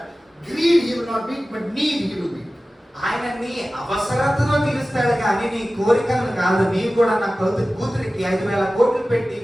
greed he will not meet, but need he will meet. ఆయన నీ అవసరతను తీరుస్తాడు కానీ నీ కోరికలను కాదు. నీవు కూడా నా కూతురికి 5,000 కోట్లు పెట్టి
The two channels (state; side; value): normal; both; correlation 0.96